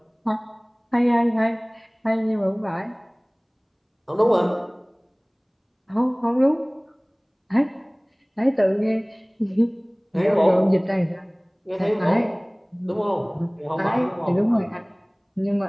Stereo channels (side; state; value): both; identical; correlation 1.00